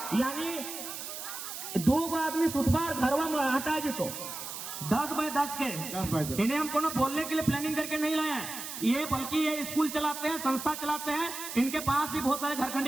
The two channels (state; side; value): noise; right; hiss, 8 dB below the sound